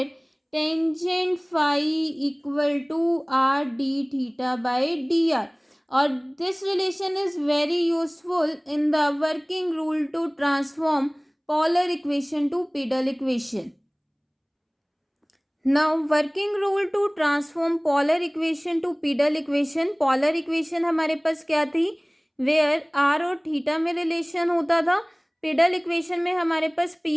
tangent phi equal to R D theta by D r. और this relation is very useful in the working rule to transform polar equation to pedal equation. Now working rule to transform polar equation to pedal equation. polar equation हमारे पास क्या थी? where r और theta में relation होता था. pedal equation में हमारे पास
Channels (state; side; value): identical; both; correlation 1.00